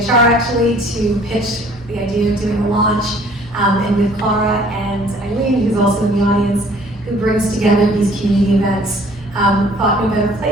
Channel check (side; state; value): both; normal; correlation 0.55